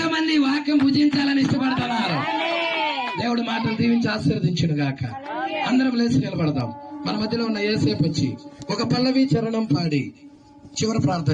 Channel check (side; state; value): both; identical; correlation 1.00